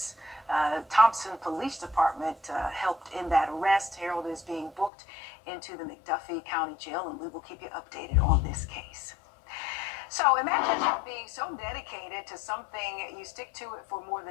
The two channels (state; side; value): drops out; right; at 4.9 s